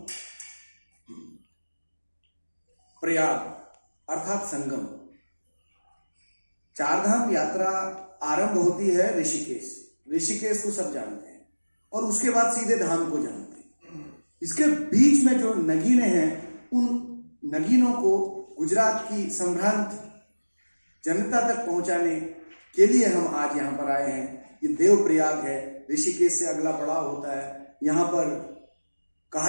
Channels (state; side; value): inverted; both; correlation -1.00